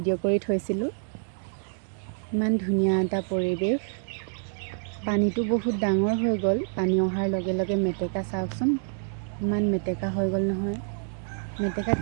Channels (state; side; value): silent; left; 60 dB below the other